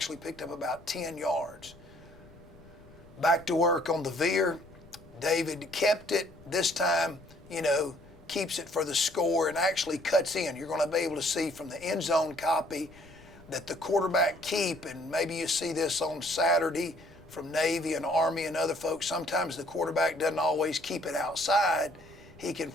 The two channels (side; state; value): left; noise; rumble, 23 dB below the sound